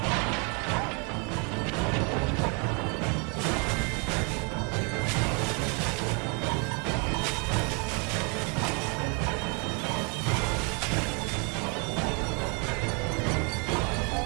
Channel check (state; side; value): quieter; left; 34.4 dB